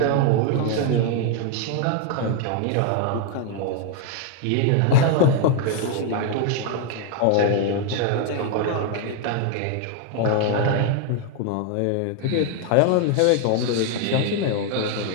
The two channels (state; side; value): different; both; correlation 0.00